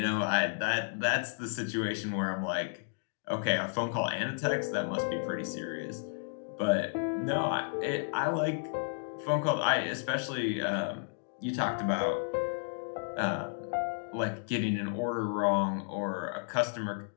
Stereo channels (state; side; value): silent; right; digital silence